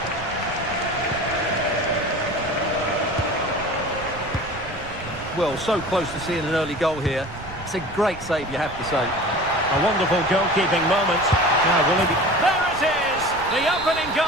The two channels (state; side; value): noise; right; rumble, 15 dB below the sound